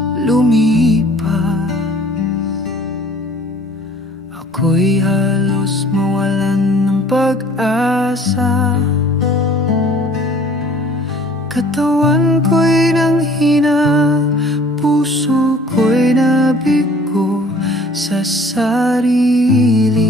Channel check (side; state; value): both; normal; correlation 0.52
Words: lumipas, ako'y halos mawalan ng pag-asa. Katawan ko'y nanghina, puso ko'y nabigo sa